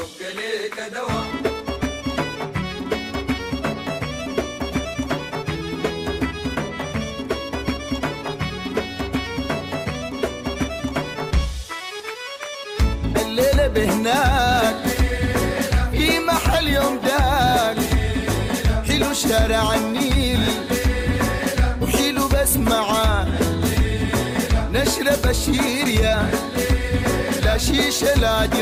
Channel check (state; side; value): identical; both; correlation 1.00